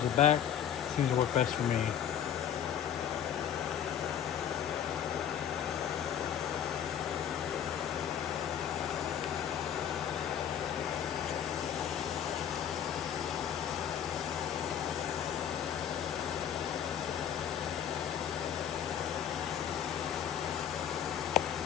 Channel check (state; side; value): quieter; right; 9.3 dB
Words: the back. It seems to work best for me.